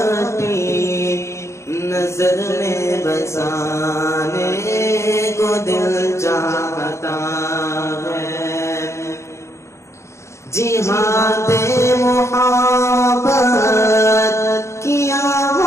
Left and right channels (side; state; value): right; late; 0.14 ms